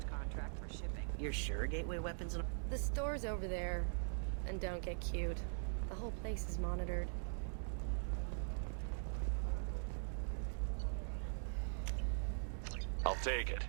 contract for shipping. You're sure Gateway Weapons... The store's over there. And don't get cute. The whole place is monitored. I'll take it.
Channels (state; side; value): silent; left; digital silence